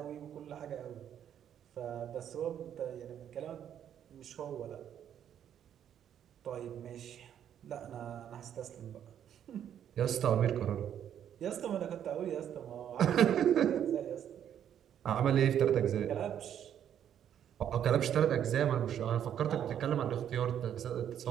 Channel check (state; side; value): quieter; left; 9.7 dB